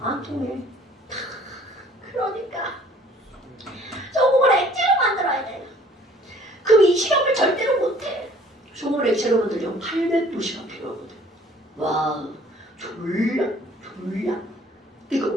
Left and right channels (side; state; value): both; normal; correlation 0.55